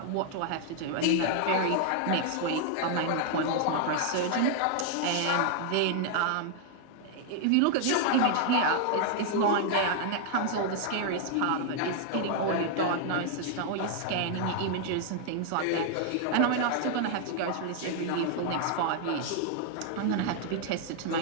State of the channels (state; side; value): different; both; correlation 0.00